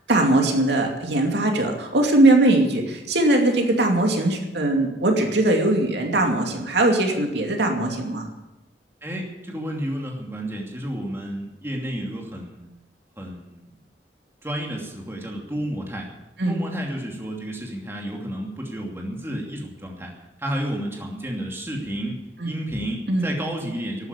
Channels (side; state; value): both; normal; correlation 0.50